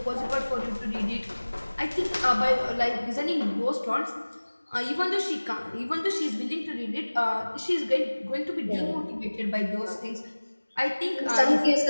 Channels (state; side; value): inverted; both; correlation -1.00